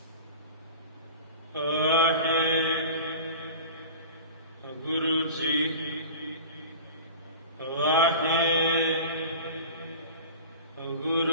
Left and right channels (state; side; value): inverted; both; correlation -0.36